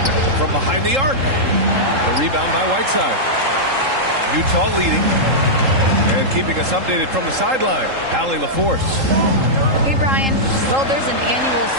from behind the arc. The rebound by Whiteside. Utah leading. And keeping us updated from the sideline, Allie LaForce. Hey, Brian. Well, there's an annual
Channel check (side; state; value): left; late; 3.8 ms